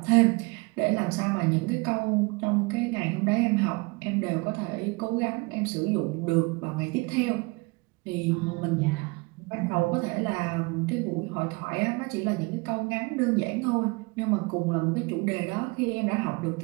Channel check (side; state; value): left; quieter; 27.1 dB